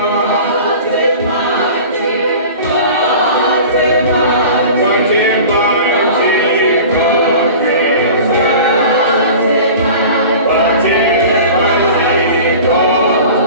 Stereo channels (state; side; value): inverted; both; correlation -0.39